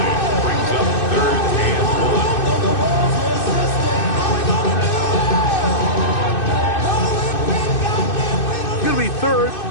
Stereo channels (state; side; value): late; right; 2.6 ms